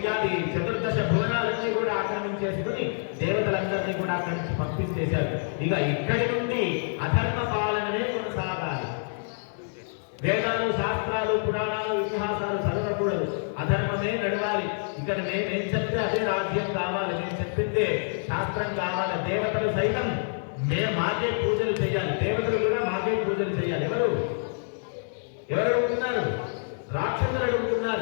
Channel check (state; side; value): silent; right; digital silence